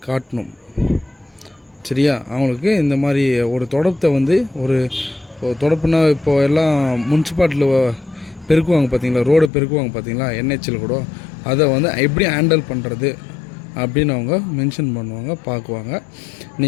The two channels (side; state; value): right; drops out; at 9.5 s